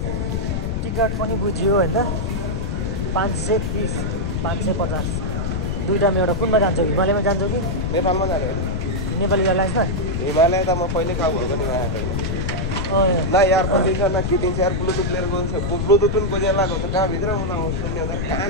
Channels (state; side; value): noise; left; rumble, 1 dB below the sound